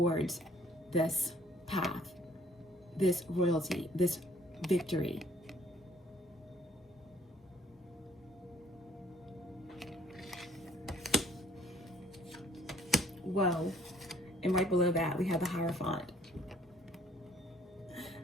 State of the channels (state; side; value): normal; both; correlation 0.60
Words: this path, this royalty, this victory. Whoa. And right below that, we have the Hierophant.